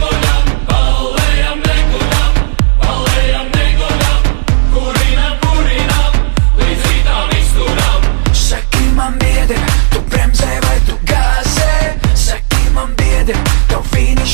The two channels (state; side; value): silent; left; digital silence